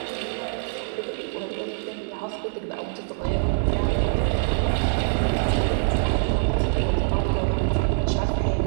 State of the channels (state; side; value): silent; left; digital silence